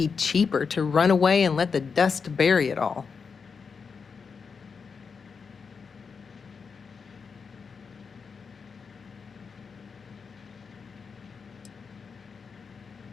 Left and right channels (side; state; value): right; quieter; 5.6 dB